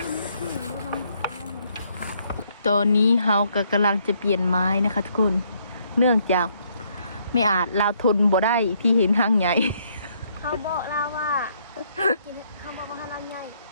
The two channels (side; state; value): both; inverted; correlation -0.70